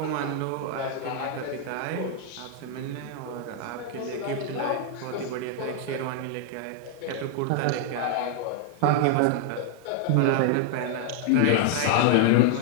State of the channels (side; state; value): both; different; correlation 0.00